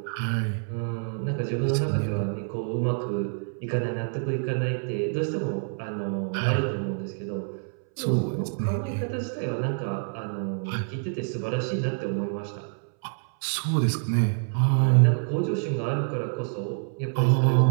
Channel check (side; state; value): left; silent; 60 dB below the other